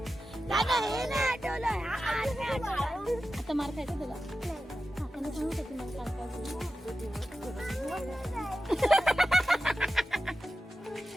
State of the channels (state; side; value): normal; both; correlation 0.92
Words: दादा हे नाही आठवलं आता मार खायचं तुला काकाने सांगत होती मला